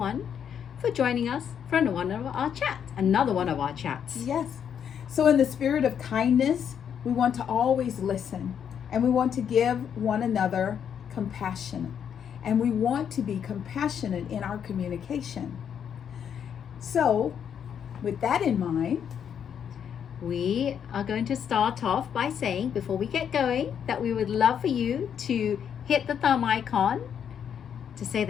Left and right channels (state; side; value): quieter; right; 8.2 dB